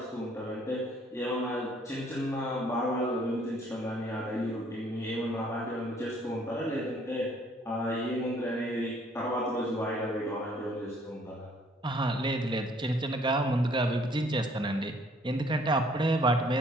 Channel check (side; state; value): both; normal; correlation 0.61